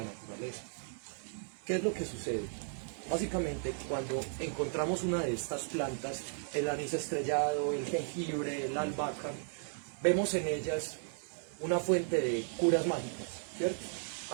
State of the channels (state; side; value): silent; left; digital silence